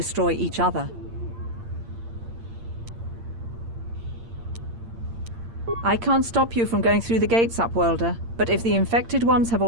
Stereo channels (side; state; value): left; late; 8.7 ms